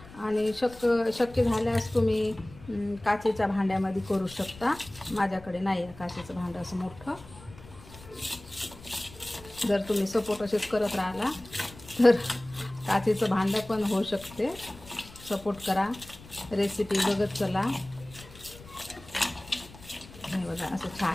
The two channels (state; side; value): noise; left; rumble, 19 dB below the sound